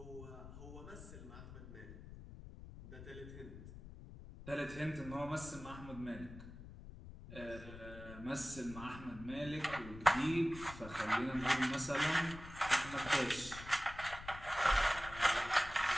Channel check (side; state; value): left; noise; rumble, 13 dB below the sound